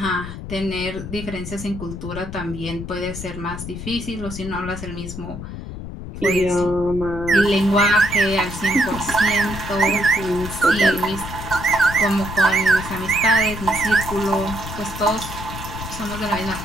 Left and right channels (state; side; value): noise; left; rumble, 9 dB below the sound